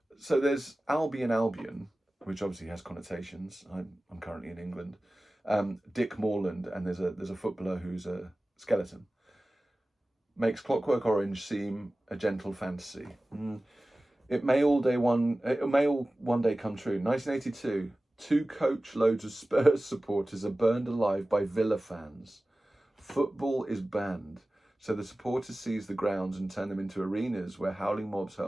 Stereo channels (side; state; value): both; normal; correlation 0.97